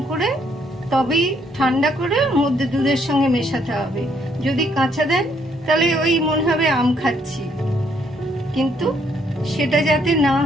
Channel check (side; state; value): both; normal; correlation 0.70